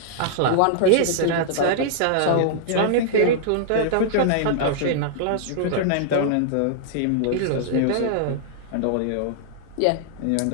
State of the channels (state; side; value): different; both; correlation -0.01